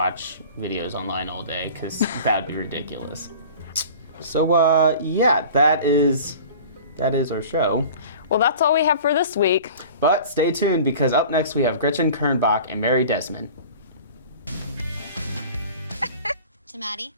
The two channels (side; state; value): both; inverted; correlation -0.42